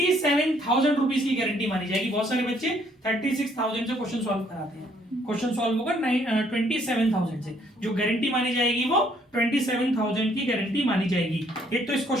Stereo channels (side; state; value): both; normal; correlation 0.66